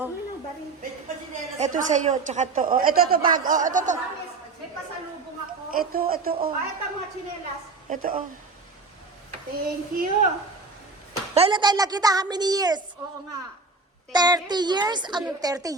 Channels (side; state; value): left; quieter; 4.0 dB